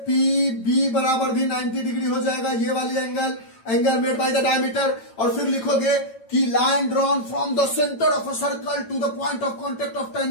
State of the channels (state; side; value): late; right; 9.0 ms